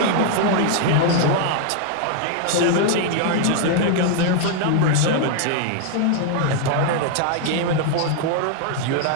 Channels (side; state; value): both; different; correlation 0.00